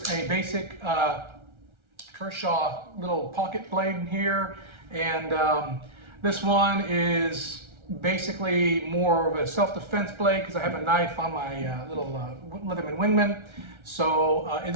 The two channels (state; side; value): late; left; 1.3 ms